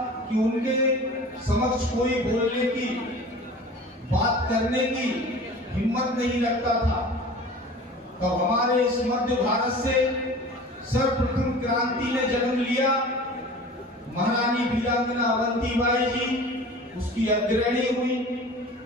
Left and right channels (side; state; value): both; normal; correlation 0.40